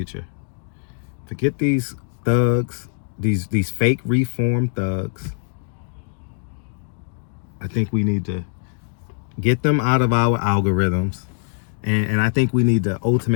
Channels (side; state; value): right; silent; digital silence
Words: Forget these thugs, these fake reformed thugs. I think we need to get them out of our algorithms, and I think we need to